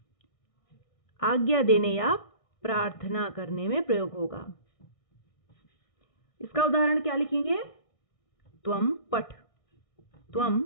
आज्ञा देने या प्रार्थना करने में प्रयोग होगा। इसका उदाहरण क्या लिखेंगे? त्वम पठ। त्वम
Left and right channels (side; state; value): right; late; 1.6 ms